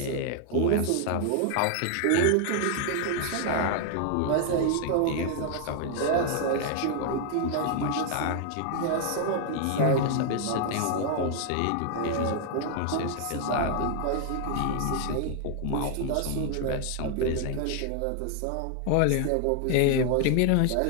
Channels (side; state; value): both; different; correlation 0.00